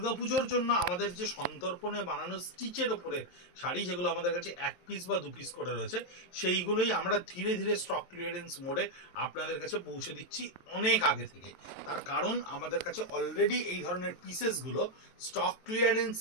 জন্য আমাদের যে সন্তর্পণে বানানো স্টিচের ওপরে শাড়ি, যেগুলো আমাদের কাছে এক পিস বা দু পিস করে রয়েছে, সেইগুলোই আমরা ধীরে ধীরে স্টক ক্লিয়ারেন্স মোডে আপনাদের কাছে পৌঁছে দিচ্ছি অনেক আগে থেকে। তার কারণ আমাদের কাছে অলরেডি এই ধরনের পিসেসগুলো স্টক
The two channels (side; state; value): right; late; 23 ms